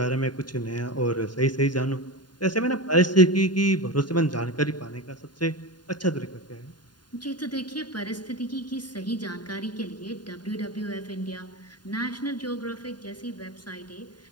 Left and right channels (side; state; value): right; late; 0.70 ms